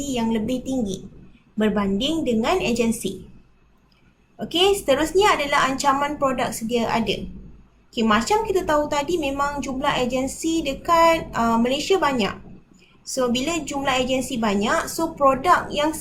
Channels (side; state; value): both; identical; correlation 1.00